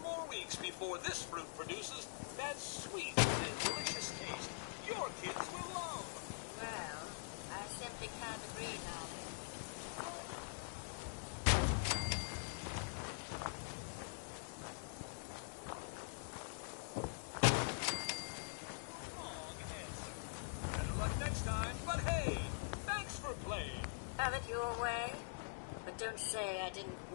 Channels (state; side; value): silent; right; digital silence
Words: more weeks before this fruit produces that sweet and delicious taste your kids will love. Well, I simply can't agree, darling. Better luck next time, but hey, thanks for playing. Have it your way, but don't say I didn't